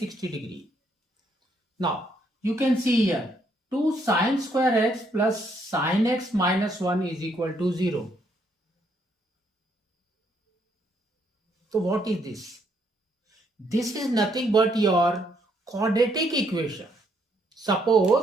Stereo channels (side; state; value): both; normal; correlation 0.72